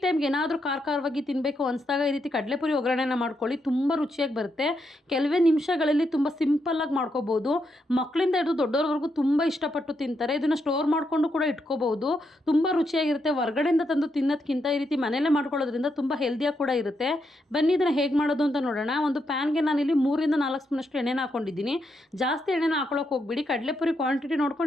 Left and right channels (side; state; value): both; normal; correlation 0.81